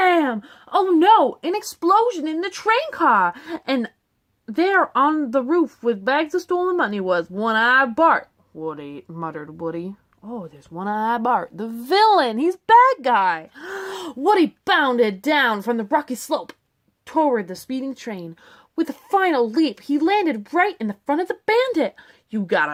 Oh no, an explosion in the train car! And there on the roof with bags of stolen money was One-Eyed Bart. Woody, muttered Woody. Oh, there's One-Eyed Bart, the villain. He's bad guy. Woody bounded down from the rocky slope toward the speeding train. With a final leap, he landed right in the front of the bandit. You got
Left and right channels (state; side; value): identical; both; correlation 1.00